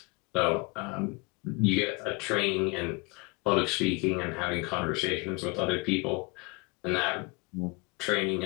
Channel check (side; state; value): right; quieter; 27.1 dB